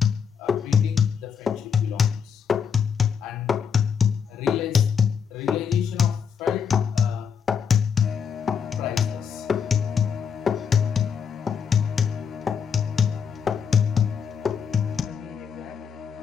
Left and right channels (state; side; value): quieter; right; 6.9 dB